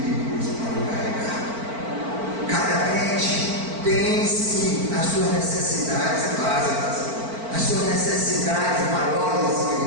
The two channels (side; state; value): left; late; 4.5 ms